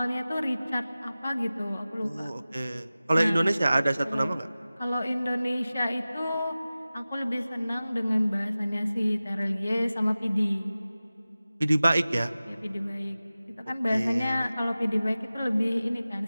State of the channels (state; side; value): inverted; both; correlation -0.96